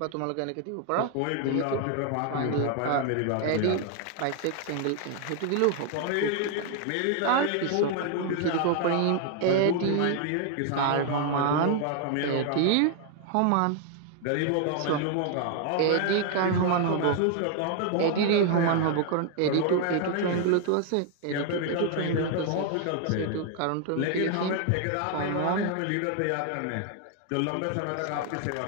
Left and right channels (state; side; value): different; both; correlation 0.00